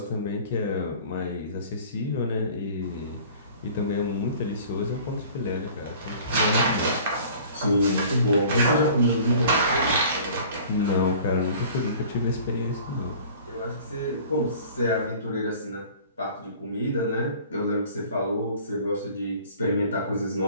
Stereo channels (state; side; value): inverted; both; correlation -0.47